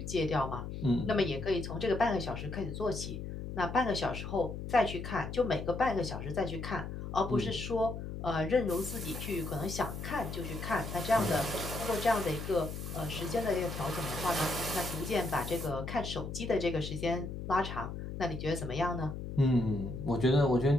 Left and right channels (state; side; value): noise; left; hum, 7 dB below the sound